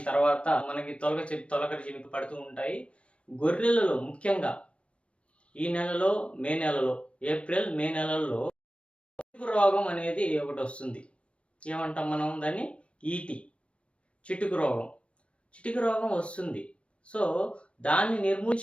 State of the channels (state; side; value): late; right; 0.061 ms